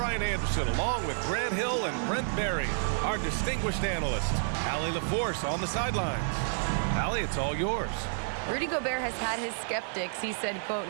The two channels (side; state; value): left; silent; digital silence